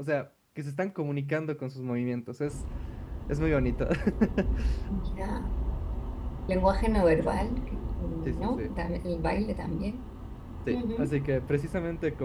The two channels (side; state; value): both; identical; correlation 1.00